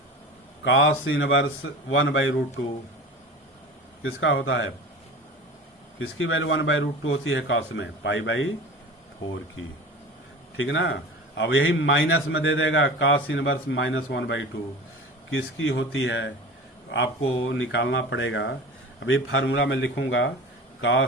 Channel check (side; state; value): both; normal; correlation 0.35